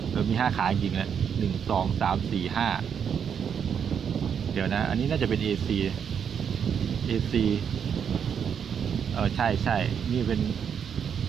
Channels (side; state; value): left; quieter; 7.6 dB